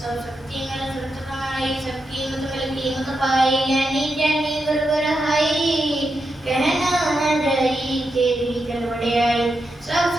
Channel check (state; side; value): normal; both; correlation 0.86